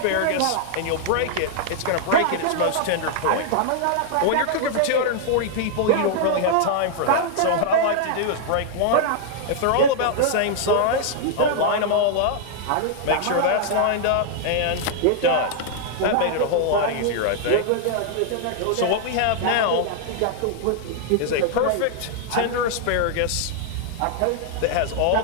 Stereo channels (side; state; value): both; different; correlation -0.01